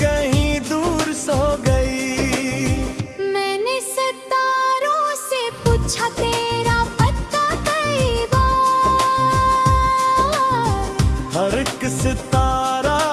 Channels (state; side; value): identical; both; correlation 1.00